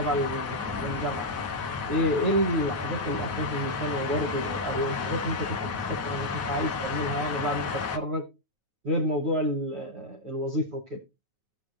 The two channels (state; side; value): late; left; 9.3 ms